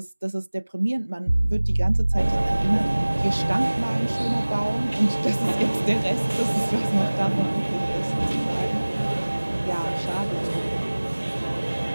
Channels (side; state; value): both; inverted; correlation -1.00